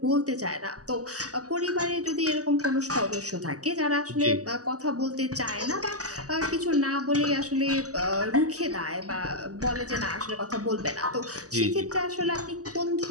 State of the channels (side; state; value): left; late; 0.66 ms